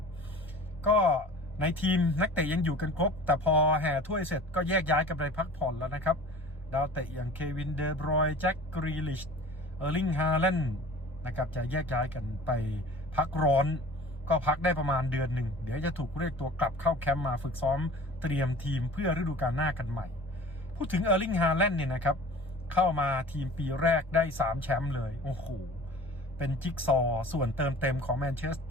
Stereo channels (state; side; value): normal; both; correlation 0.42